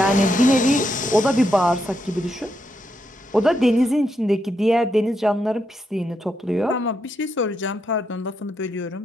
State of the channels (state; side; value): normal; both; correlation 0.81